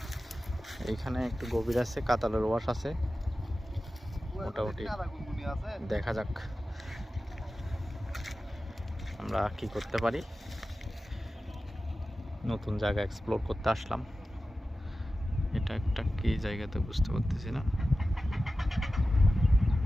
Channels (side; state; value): both; normal; correlation 0.94